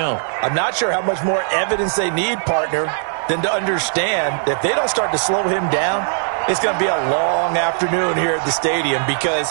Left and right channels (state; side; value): silent; left; 67 dB below the other